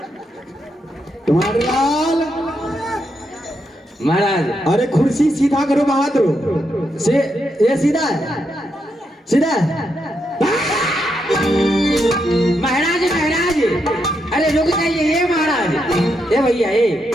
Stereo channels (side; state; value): both; normal; correlation 0.82